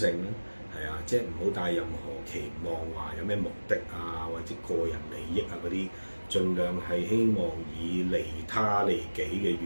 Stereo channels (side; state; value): both; inverted; correlation -1.00